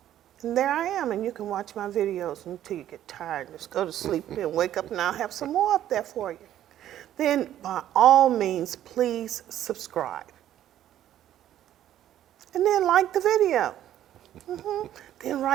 And there I am, and you can watch my videos until you get tired. Just go to sleep and wake up, and I'll have some more up there for you. Then, by all means, please subscribe. And then like the video. Then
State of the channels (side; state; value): left; quieter; 11.8 dB